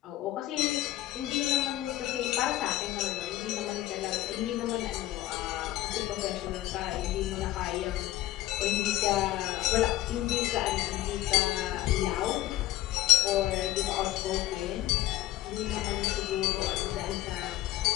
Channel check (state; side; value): quieter; right; 15.1 dB